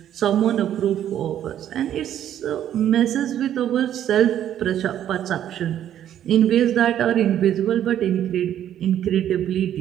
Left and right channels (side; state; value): left; quieter; 10.8 dB